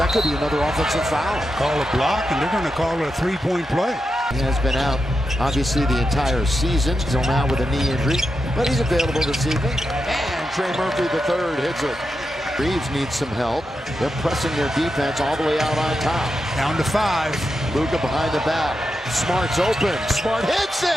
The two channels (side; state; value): both; normal; correlation 0.87